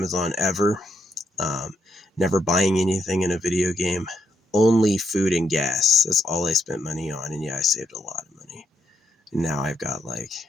ever, never buying anything in a video game, only food and gas. That's all I spent money on, and yeah, I saved a lot of money. And now I've got like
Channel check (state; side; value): normal; both; correlation 0.78